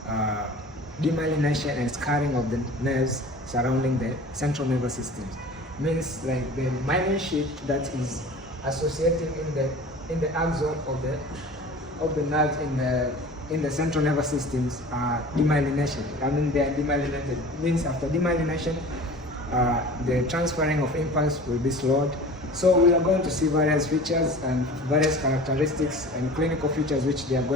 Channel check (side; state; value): both; normal; correlation 0.40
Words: demyelination and scarring of the nerves surrounding the central nervous system. Means like the myelin sheet that is associating in the axon of the nerves in the central nervous systems are demyelination. I mean, they are demyelinated. It means after demyelination, the transferring of impulse will be slowed. So we are going to see various features and various characteristics and clinical features which they are